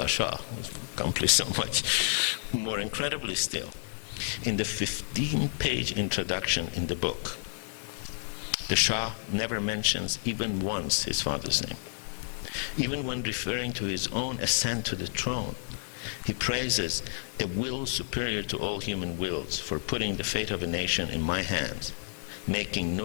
Shah accomplished so much. More incredibly still, in the 15-page introduction in the book, the Shah never mentions even once his father's name. Even when referring to his own ascent to the throne, he praises a will superior to all human wills for putting the fate of a nation in my hands, making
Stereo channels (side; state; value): right; silent; digital silence